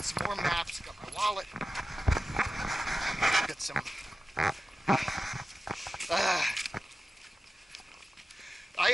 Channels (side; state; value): both; normal; correlation 0.93